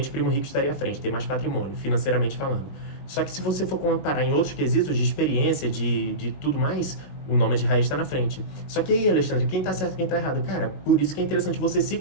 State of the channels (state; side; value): late; right; 21 ms